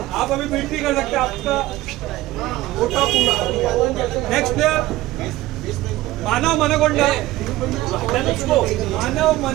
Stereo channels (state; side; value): quieter; left; 16.9 dB